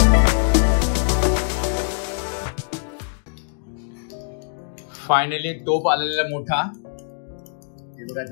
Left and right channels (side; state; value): right; silent; digital silence